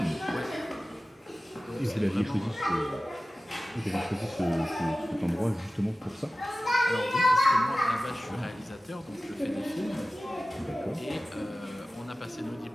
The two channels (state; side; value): normal; both; correlation 0.96